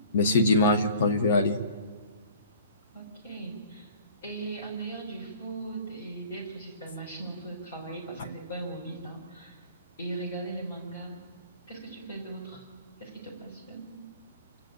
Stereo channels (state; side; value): inverted; both; correlation -0.47